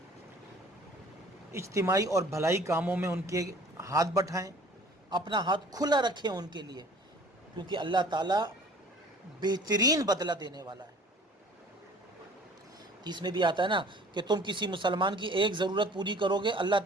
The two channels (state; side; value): normal; both; correlation 0.49